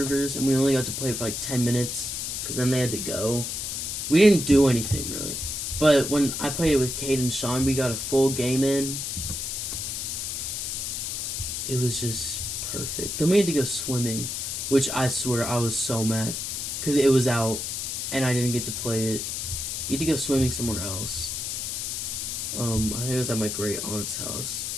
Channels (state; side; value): noise; left; hiss, 3 dB below the sound